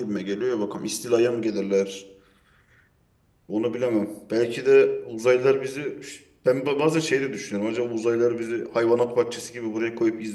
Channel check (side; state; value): both; identical; correlation 1.00